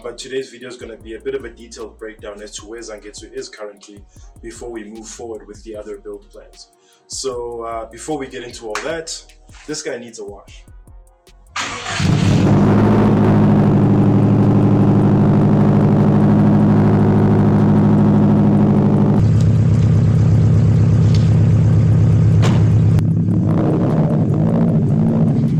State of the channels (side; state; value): both; identical; correlation 1.00